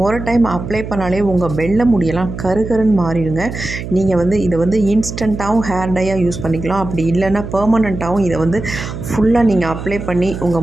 ஒரு டைம் அப்ளை பண்ணாலே உங்கள் வெள்ளை முடியெல்லாம் கருகருன்னு மாறிடுங்க. நீங்கள் இதை இன்ஸ்டண்ட்டாகவும் ஹேர் டையாக யூஸ் பண்ணிக்கலாம். அப்படி இல்லைன்னா பெர்மனண்ட்டாகவும் இதை ஃபுல்லாக நீங்கள் அப்ளை பண்ணி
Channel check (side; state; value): right; noise; hum, 8 dB below the sound